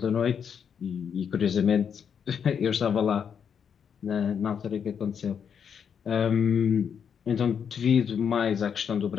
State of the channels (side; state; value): right; quieter; 7.4 dB